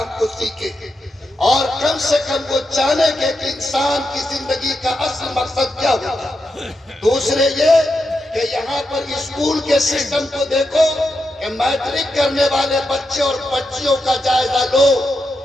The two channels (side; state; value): both; normal; correlation 0.86